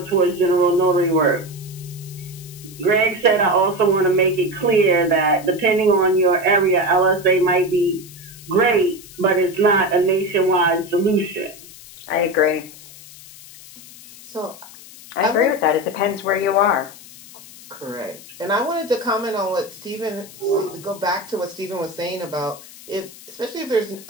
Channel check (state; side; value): noise; left; hiss, 19 dB below the sound